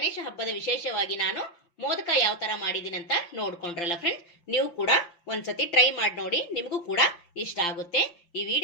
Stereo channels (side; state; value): right; late; 5.8 ms